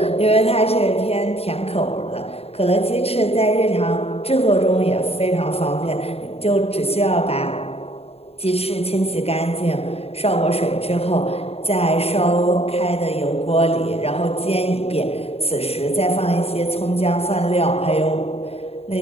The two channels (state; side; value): late; right; 0.29 ms